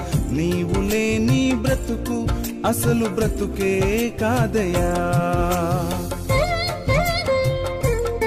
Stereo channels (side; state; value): both; identical; correlation 1.00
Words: నీవు లేని బ్రతుకు అసలు బ్రతుకే కాదయా.